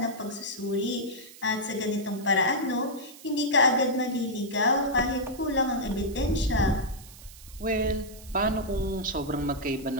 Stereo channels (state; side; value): noise; right; hiss, 19 dB below the sound